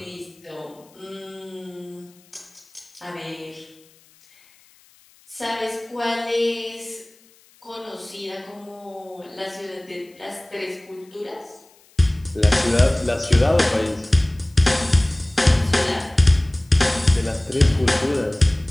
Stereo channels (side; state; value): left; noise; hiss, 30 dB below the sound